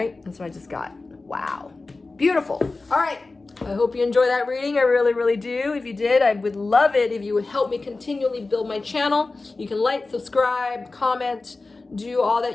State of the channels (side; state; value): right; quieter; 3.5 dB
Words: that's what I just got. Wow, beautiful. All right, I hope you enjoy that reading. I really, really do. If you did, I would love it if you would help me continually build my channel. You can like, subscribe, comment, do all